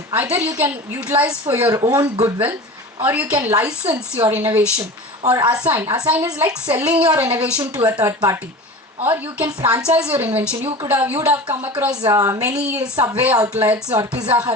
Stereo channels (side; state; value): both; normal; correlation 0.34